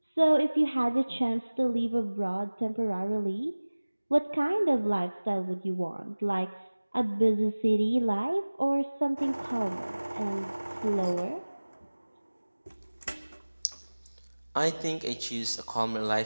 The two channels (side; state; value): both; inverted; correlation -1.00